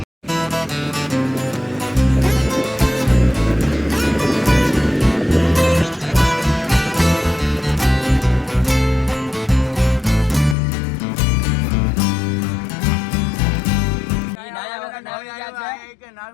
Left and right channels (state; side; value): drops out; right; at 10.6 s